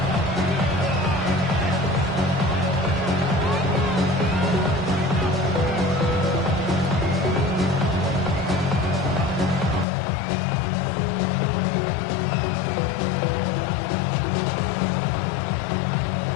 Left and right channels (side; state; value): right; drops out; at 9.9 s